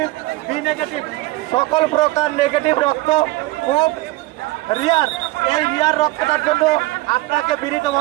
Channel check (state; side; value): quieter; left; 19.5 dB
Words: B negative, সকল প্রকার নেগেটিভ রক্ত খুব রিয়ার। এই রিয়ার রক্তটার জন্য আপনাকে